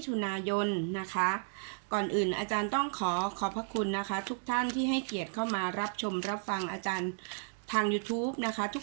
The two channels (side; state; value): left; silent; 56 dB below the other